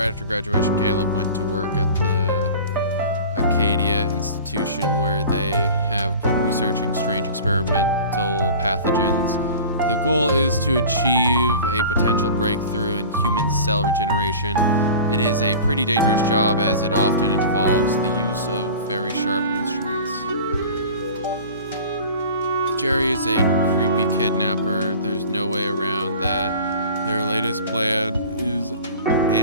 after graduation, Caleb went to work at the Acadia Institution where they have been researching strange experimental pathogens. The goal is to achieve a potential breakthrough in human cell regeneration. It is a pretty dangerous job as it often involves the use of very sharp instruments. Jerry is a creepy kidnapper. There's no way around that. Their latest plan is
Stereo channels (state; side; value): inverted; both; correlation -0.39